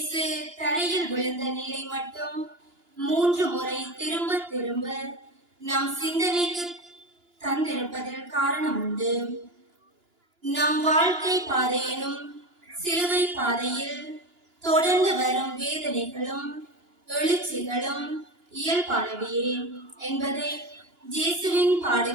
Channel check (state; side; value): late; left; 2.9 ms